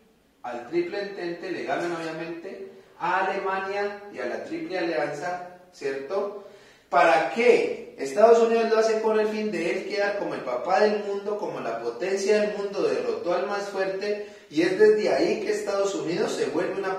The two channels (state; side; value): identical; both; correlation 1.00